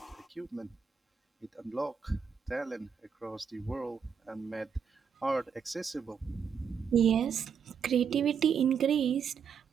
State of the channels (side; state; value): left; quieter; 6.8 dB